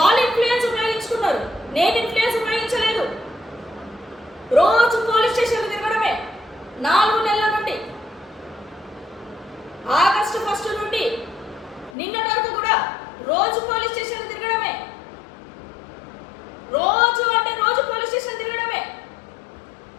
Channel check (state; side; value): drops out; right; at 12.0 s